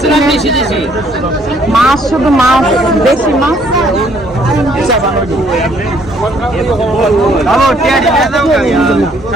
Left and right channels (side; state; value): both; normal; correlation 0.65